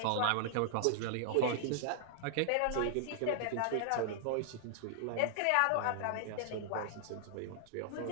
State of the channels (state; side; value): different; both; correlation -0.01